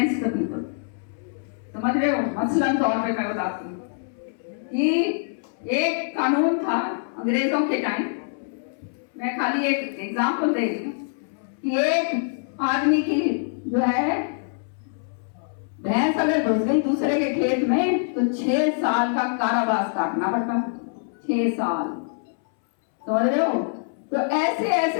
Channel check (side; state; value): right; silent; 62 dB below the other